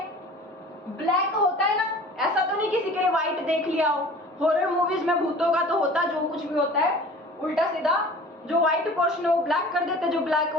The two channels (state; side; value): normal; both; correlation 0.44